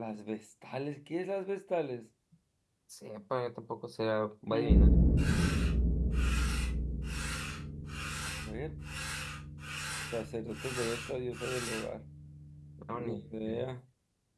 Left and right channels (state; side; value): identical; both; correlation 1.00